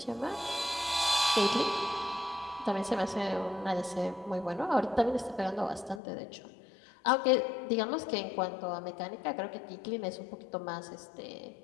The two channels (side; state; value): right; drops out; at 6.0 s